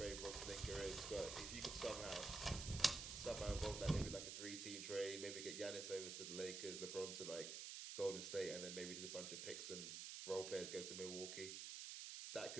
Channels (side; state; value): right; noise; hiss, 5 dB below the sound